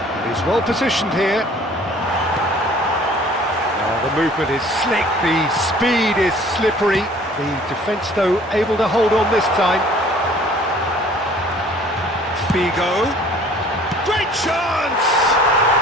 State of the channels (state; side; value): normal; both; correlation 0.52